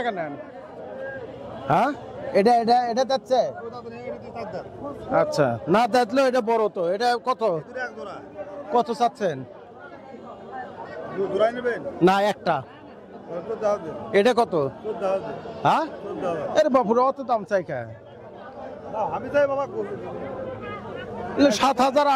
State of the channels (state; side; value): identical; both; correlation 1.00